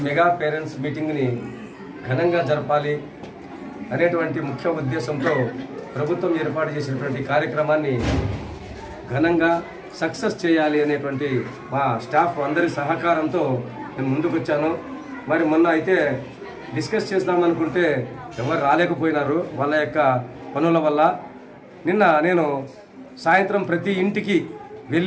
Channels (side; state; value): both; identical; correlation 1.00